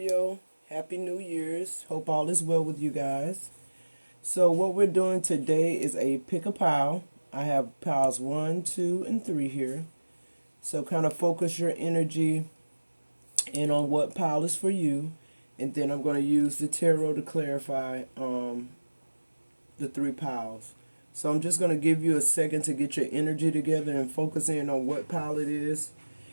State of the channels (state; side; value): inverted; both; correlation -1.00